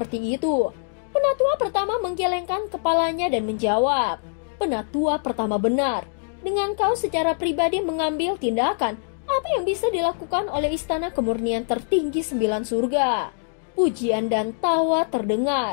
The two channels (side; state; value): right; silent; digital silence